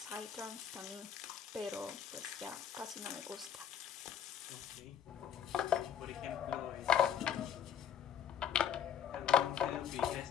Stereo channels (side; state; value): right; quieter; 8.7 dB